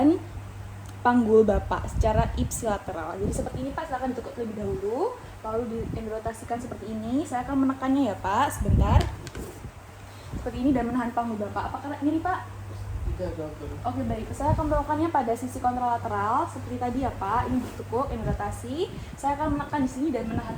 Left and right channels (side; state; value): both; identical; correlation 1.00